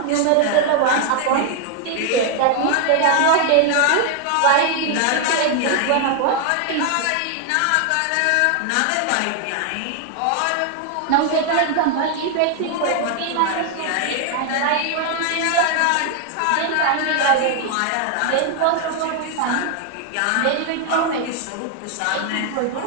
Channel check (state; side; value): different; both; correlation 0.00